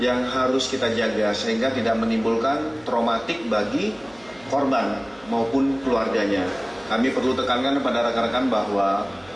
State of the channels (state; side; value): noise; right; hum, 27 dB below the sound